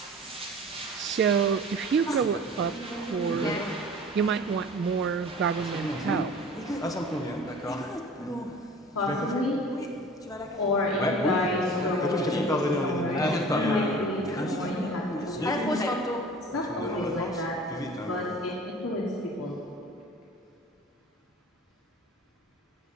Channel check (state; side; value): normal; both; correlation 0.43